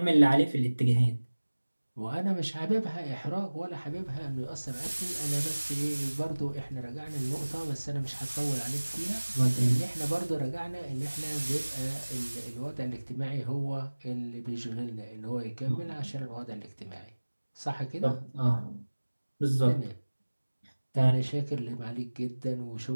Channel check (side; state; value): both; inverted; correlation -1.00